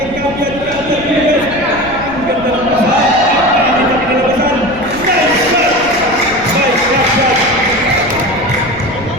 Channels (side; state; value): left; noise; rumble, 17 dB below the sound